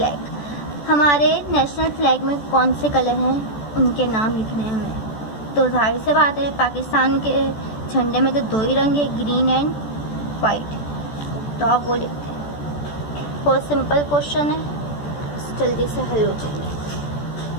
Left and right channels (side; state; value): right; late; 14 ms